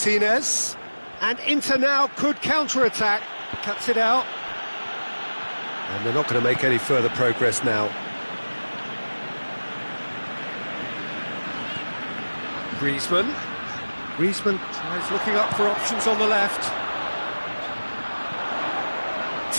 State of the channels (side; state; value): both; inverted; correlation -1.00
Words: And Inter now could counter-attack. Cuts it out. And they're not going to make any further progress now. Griezmann. Griezmann tries looking up for options on the left.